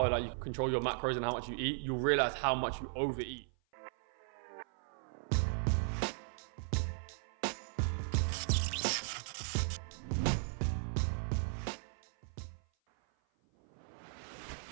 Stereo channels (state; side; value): silent; left; 53 dB below the other